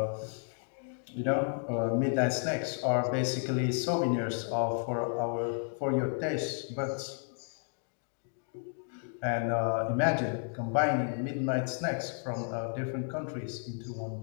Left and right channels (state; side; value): silent; right; 56 dB below the other